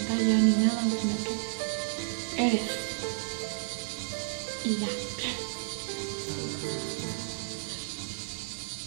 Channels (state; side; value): silent; left; digital silence